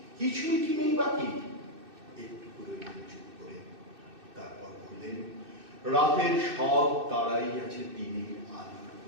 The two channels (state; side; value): late; left; 2.6 ms